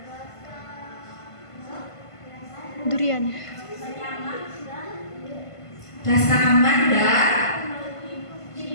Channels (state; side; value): late; right; 1.5 ms